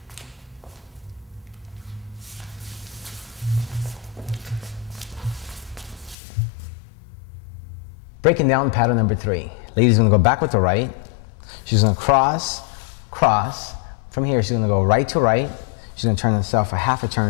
Breaking down pattern number 3. Lady's gonna go back with the right. She's gonna cross, cross. From here, she's gonna go right to right. She's gonna turn herself a half a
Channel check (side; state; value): right; drops out; at 6.2 s